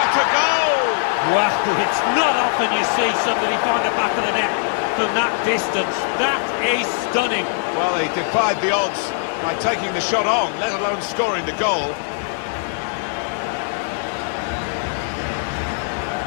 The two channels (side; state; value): right; silent; digital silence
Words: a goal! Wow, it's not often you see somebody find the back of the net from that distance. That is stunning. Well, he defied the odds by taking the shot on, let alone scoring the goal.